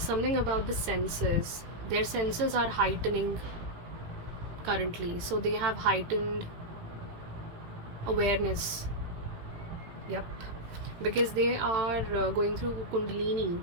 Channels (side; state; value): left; late; 18 ms